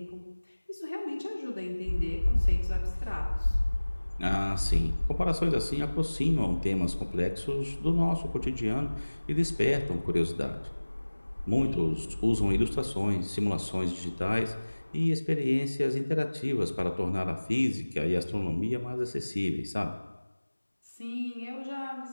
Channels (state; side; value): inverted; both; correlation -1.00